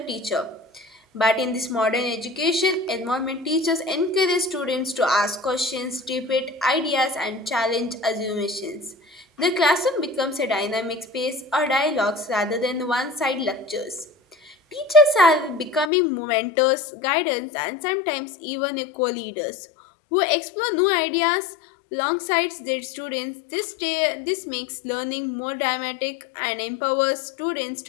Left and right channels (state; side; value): drops out; right; at 15.9 s